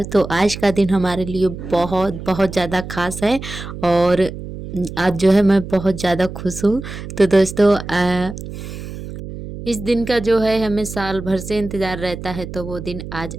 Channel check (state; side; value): noise; right; hum, 10 dB below the sound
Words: तो आज का दिन हमारे लिए बहुत बहुत ज़्यादा खास है और आज जो है मैं बहुत ज़्यादा खुश हूँ। तो दोस्तों, इस दिन का जो है हमें साल भर से इंतज़ार रहता है, तो वो दिन आज